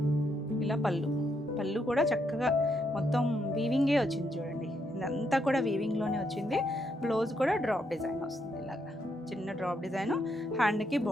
ఇలా పళ్ళు కూడా చక్కగా మొత్తం వీవింగే వచ్చింది చూడండి. ఇదంతా కూడా వీవింగ్లోనే వచ్చింది. బ్లౌజ్ కూడా డ్రాప్ డిజైన్ వస్తుంది, ఇలాగా చిన్న డ్రాప్ డిజైన్. హ్యాండ్కి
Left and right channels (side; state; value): both; normal; correlation 0.77